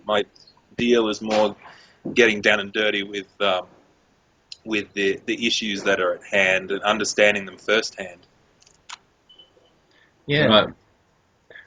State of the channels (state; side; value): identical; both; correlation 1.00